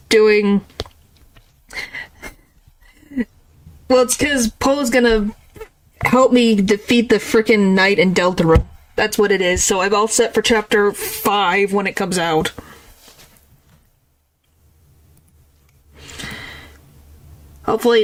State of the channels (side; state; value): both; identical; correlation 1.00